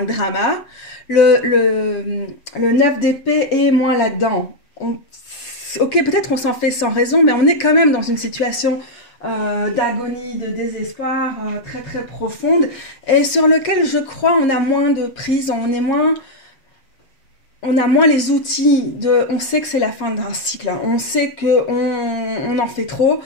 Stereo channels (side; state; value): right; late; 7.4 ms